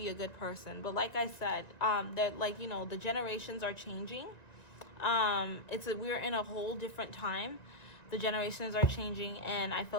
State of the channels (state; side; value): late; right; 1.9 ms